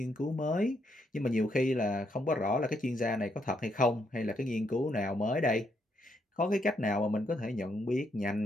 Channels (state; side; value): normal; both; correlation 0.76